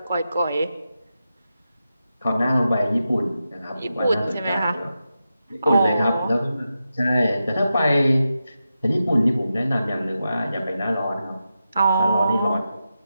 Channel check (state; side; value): inverted; both; correlation -0.89